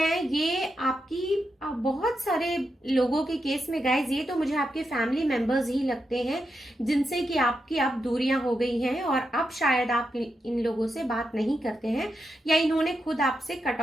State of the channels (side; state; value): both; normal; correlation 0.86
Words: ये आपकी बहुत सारे लोगों के केस में गाइज ये तो मुझे आपके फैमिली मेंबर्स ही लगते हैं जिनसे कि आपकी अब दूरियां हो गई हैं और अब शायद आप इन लोगों से बात नहीं करते हैं या इन्होंने खुद आपसे कट